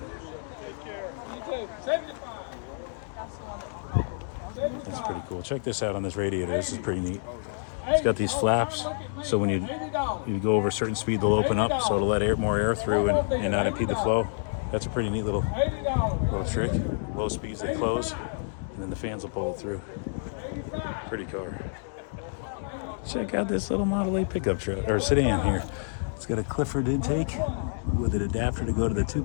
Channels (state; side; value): silent; right; digital silence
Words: That's pretty cool. Check this out on this radiator. This is pretty neat. It's got these flaps, so when you go over a certain speed, they'll open up, so it'll let more air through and not impede the flow. That's a pretty neat little trick. Low speeds, they close, and then the fans will pull it through. Pretty car. Check out this little Model A pickup truck or sedan here. It's got a Clifford intake with an adapter to go to the